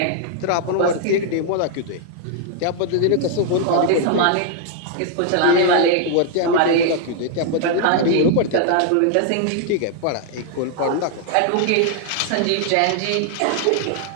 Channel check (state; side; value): different; both; correlation 0.00